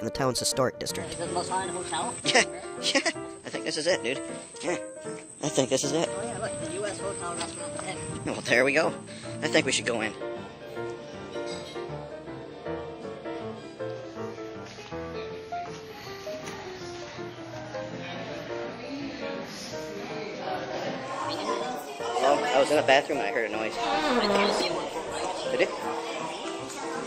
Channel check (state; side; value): identical; both; correlation 1.00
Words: the town's historic district. Is it the most haunted hotel? Yeah, I think this is it, dude. Yeah, I think this is it. Oh yeah, look, the U.S. hotel restaurant. Well, there we go. I think we should go in. Oh, I was in the bathroom and I heard a noise. Did it?